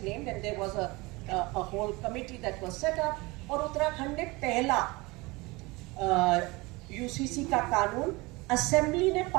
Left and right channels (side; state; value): left; quieter; 23.7 dB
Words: and there was a whole committee that was set up और उत्तराखंड ने पहला UCC का कानून assembly ने